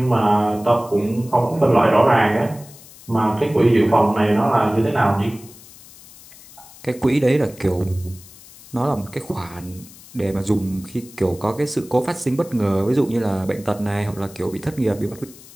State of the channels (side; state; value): left; noise; hiss, 21 dB below the sound